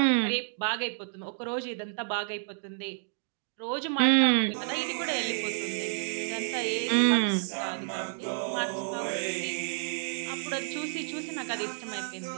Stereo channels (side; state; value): left; silent; 58 dB below the other